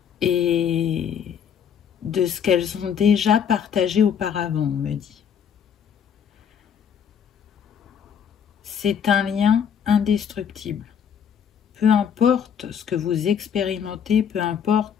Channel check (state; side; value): quieter; right; 7.9 dB